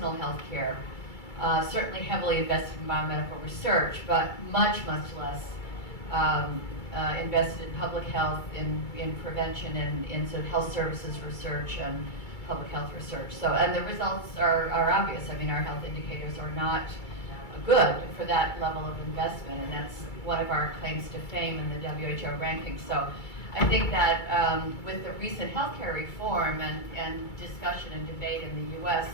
health care, certainly heavily invested in biomedical research, but much less invested in public health, in prevention, and in sort of health services research and public health research. So, and the results are obvious. I mean, our health indicators are not good for that level of investment, and that's one of our claims to fame in the WHO rankings. So I think that with the recent healthcare reform and discussion and debate in the U.S.,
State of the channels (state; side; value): late; right; 2.3 ms